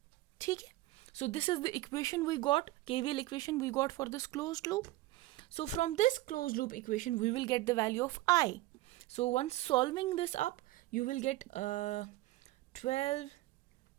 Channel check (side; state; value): left; quieter; 17.7 dB